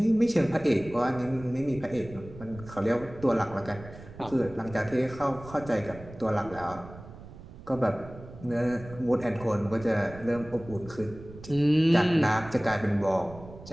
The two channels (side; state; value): right; noise; rumble, 16 dB below the sound